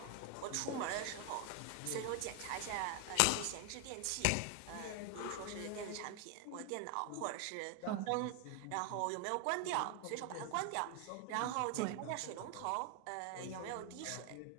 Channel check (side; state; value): both; different; correlation 0.00